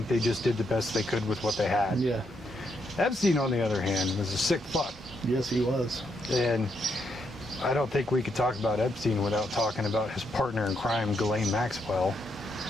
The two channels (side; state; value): both; normal; correlation 0.78